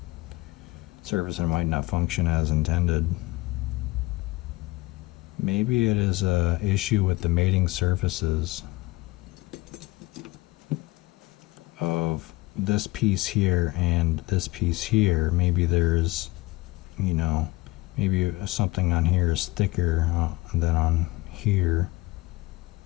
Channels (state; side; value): quieter; right; 20.3 dB